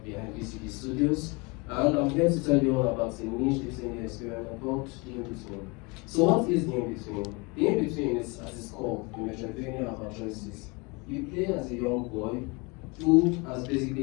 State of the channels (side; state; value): right; quieter; 28.4 dB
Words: VCD Studios, and I'm here to tell you all about a niche listening experiment called the Inbetween. So, what is the Inbetween? The Inbetween is, at its core, the Metroidvania of our choices. You play as a young boy who has